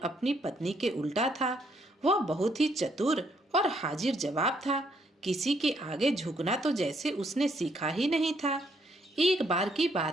अपनी पत्नी के उल्टा था। वह बहुत ही चतुर और हाजिर जवाब था। किसी के आगे झुकना तो जैसे उसने सीखा ही नहीं था। एक बार की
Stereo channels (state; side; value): normal; both; correlation 0.71